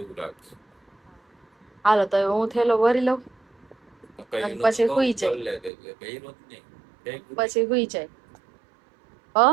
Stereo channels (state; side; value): drops out; left; at 5.7 s